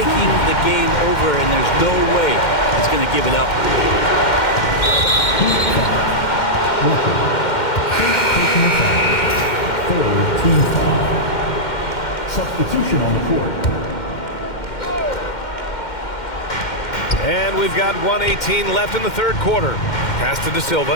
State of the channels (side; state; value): right; late; 2.1 ms